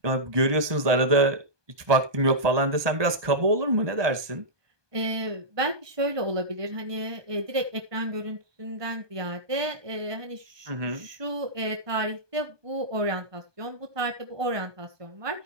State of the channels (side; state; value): left; late; 1.2 ms